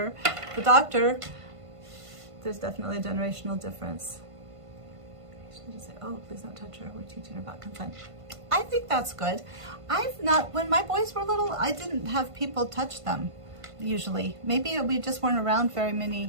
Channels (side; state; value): left; late; 1.5 ms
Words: The doctor, there's definitely a generational difference. She just say, oh, please don't touch her. We're teaching her about consent. I think that's good. When my boys were little, I didn't have people touch them. Usually, maybe we just weren't around very